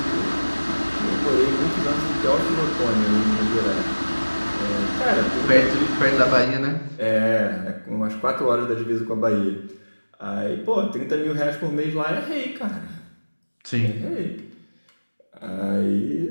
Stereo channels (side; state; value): both; inverted; correlation -1.00